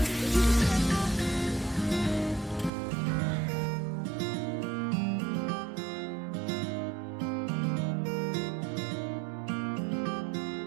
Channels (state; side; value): drops out; left; at 2.7 s